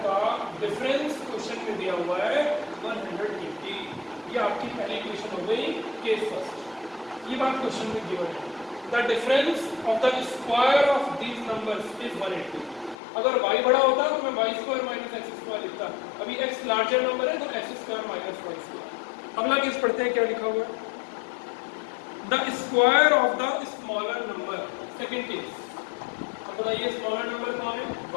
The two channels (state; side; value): drops out; right; at 13.0 s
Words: का डिफरेंस क्वेश्चन में दिया हुआ है 180। ये आपकी पहली इक्वेशन हो गई, केस फर्स्ट। ये बात क्वेश्चन में गिवन है। The difference of the square of these numbers is 180। अगर y बड़ा होता तो मैं y square minus x square लिखता। अभी x लार्जर नंबर है तो x square minus y square. अगला केस पढ़ते हैं, क्या लिखा हुआ है, the square of the smaller number. Second case, अब बताइए स्मॉलर नंबर कौन है,